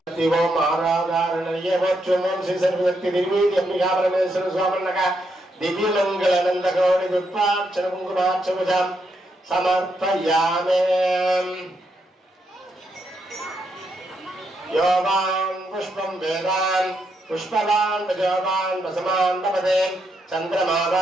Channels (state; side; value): normal; both; correlation 0.80